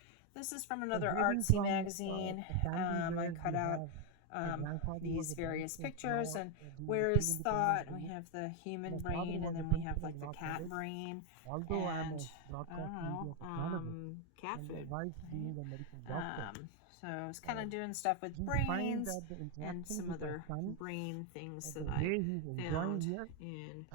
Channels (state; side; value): different; both; correlation 0.01